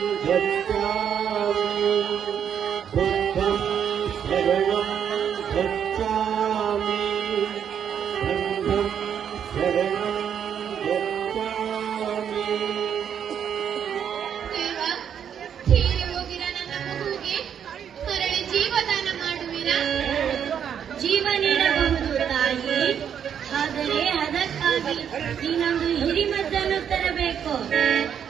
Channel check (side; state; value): left; quieter; 8.4 dB